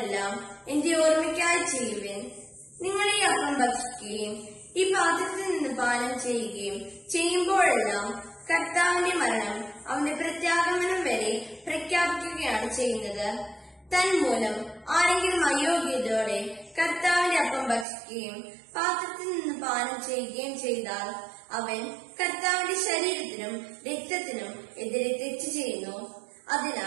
എന്റെ ഓർമ്മയ്ക്കായി ചെയ്യുവേ. നിങ്ങൾ ഈ അപ്പം ഭക്ഷിക്കുകയും ഈ പാത്രത്തിൽ നിന്ന് പാനം ചെയ്യുകയും ചെയ്യുമ്പോഴെല്ലാം കർത്താവിന്റെ മരണം അവന്റെ പ്രത്യാഗമനം വരെ പ്രഖ്യാപിക്കുകയാണ് ചെയ്യുന്നത്. തന്മൂലം ആരെങ്കിലും അയോഗ്യതയോടെ കർത്താവിന്റെ അപ്പം ഭക്ഷിക്കുകയും പാത്രത്തിൽ നിന്ന് പാനം ചെയ്യുകയും ചെയ്താൽ അവൻ കർത്താവിന്റെ ശരീരത്തിനും രക്തത്തിനും എതിരെ തെറ്റ് ചെയ്യുന്നു.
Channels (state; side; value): drops out; left; at 17.9 s